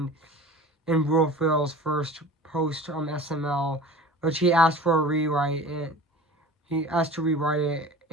Will Ferrell's first post SML, which he asked for a rewrite. And he asked to rewrite it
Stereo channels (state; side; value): normal; both; correlation 0.40